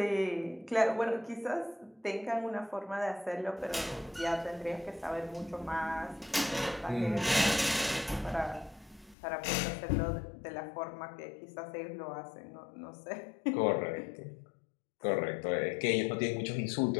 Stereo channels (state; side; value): drops out; right; at 9.2 s